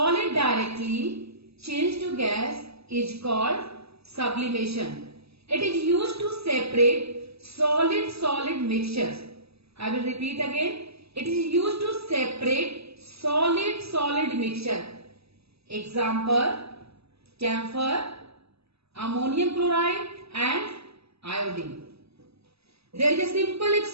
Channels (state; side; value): late; left; 0.78 ms